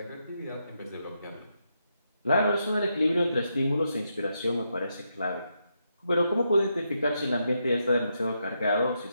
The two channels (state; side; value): inverted; both; correlation -0.82